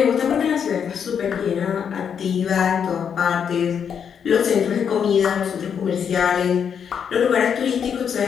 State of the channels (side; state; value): right; quieter; 7.5 dB